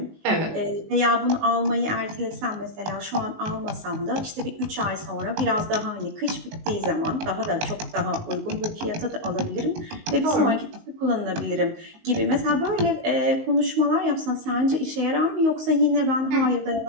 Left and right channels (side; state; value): left; late; 19 ms